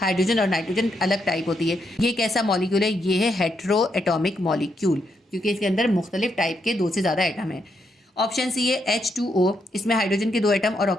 और नाइट्रोजन अलग टाइप होती है। ये कैसा मॉलिक्यूल है? ये है हेट्रो एटॉमिक मॉलिक्यूल, क्योंकि इसके अंदर मुख्तलिफ टाइप के दो से ज़्यादा एटम है। ऑप्शन सी है H2O। इसमें हाइड्रोजन के दो एटम और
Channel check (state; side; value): normal; both; correlation 0.79